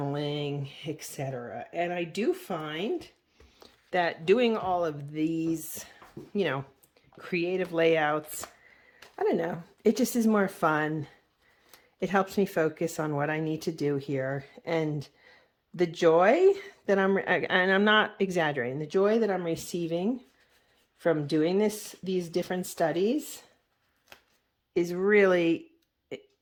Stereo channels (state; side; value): identical; both; correlation 1.00